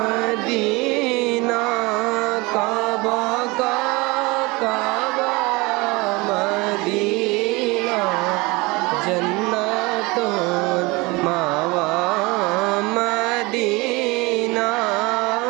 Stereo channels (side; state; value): left; quieter; 24.4 dB